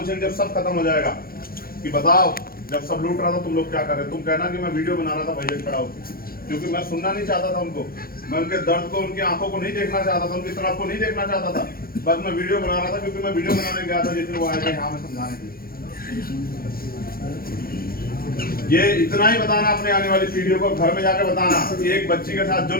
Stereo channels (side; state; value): right; late; 0.43 ms